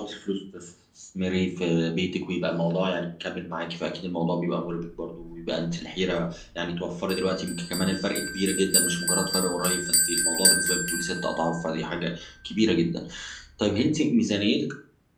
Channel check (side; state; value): both; identical; correlation 1.00